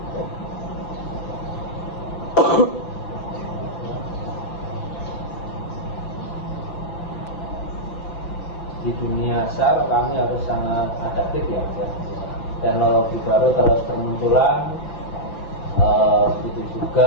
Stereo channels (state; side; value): late; right; 5.9 ms